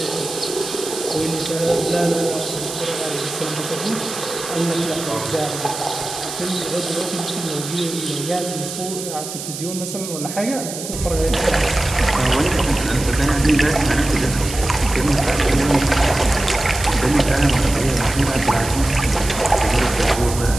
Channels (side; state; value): right; noise; hiss, 9 dB below the sound